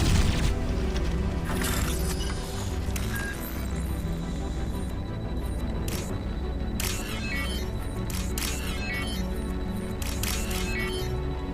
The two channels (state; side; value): identical; both; correlation 1.00